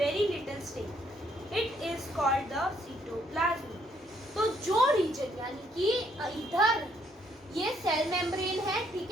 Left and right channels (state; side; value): normal; both; correlation 0.69